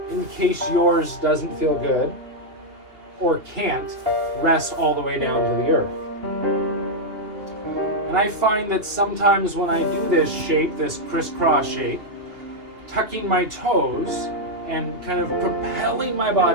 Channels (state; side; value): late; left; 2.8 ms